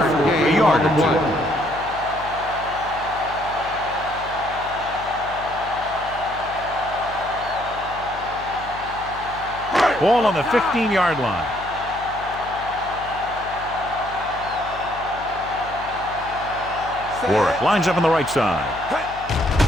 a yard or two. Ball on the 15-yard line. Warwick lines up on the right side.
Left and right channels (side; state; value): left; noise; hum, 16 dB below the sound